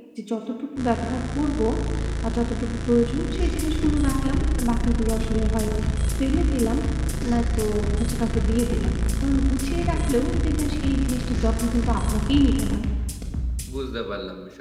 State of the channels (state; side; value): identical; both; correlation 1.00